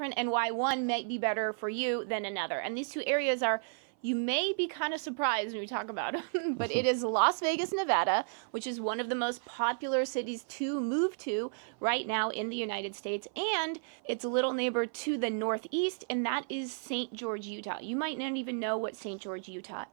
and why one might be better for you than another. And these two areas are, you may be kind of surprised when we talk about it, but it is Las Vegas, Nevada, which is one of the most popular cities to move to right now in the United States. And it's a little neighbor to the northeast, and that is St. George, Utah. You might not even know what St. George, Utah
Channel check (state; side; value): silent; left; 55 dB below the other